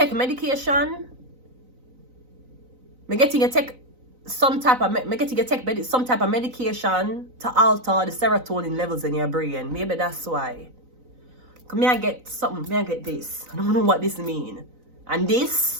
medication. Me getting you take some type of medication to alter the serotonin levels in your brain. Maybe that's why. May I get something? May I get this? I don't know what this means. And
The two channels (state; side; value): late; left; 3.9 ms